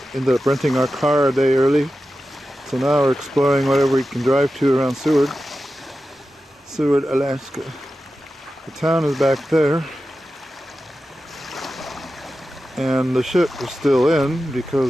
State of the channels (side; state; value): both; normal; correlation 0.92